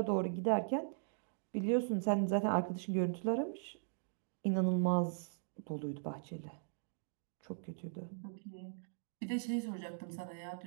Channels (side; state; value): left; silent; digital silence